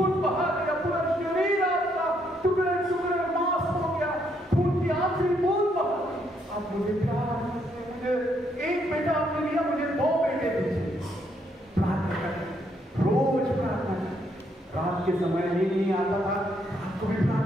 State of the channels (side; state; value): both; normal; correlation 0.73